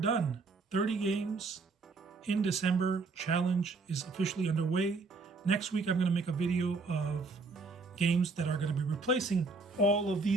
30 games in December. Challenge is officially underway. Next week, I'm going to make a video of games that are going to be replacing all of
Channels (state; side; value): quieter; left; 4.0 dB